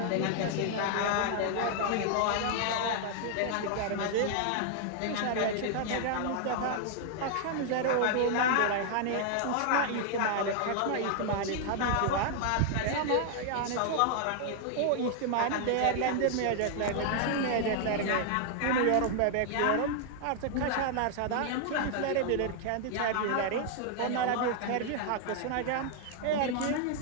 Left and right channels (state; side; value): different; both; correlation 0.00